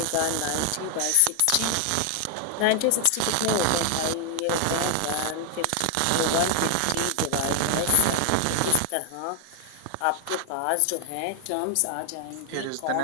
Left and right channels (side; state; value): both; different; correlation 0.00